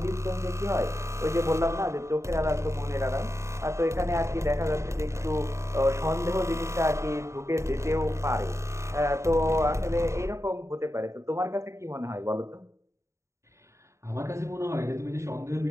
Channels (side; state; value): left; late; 0.14 ms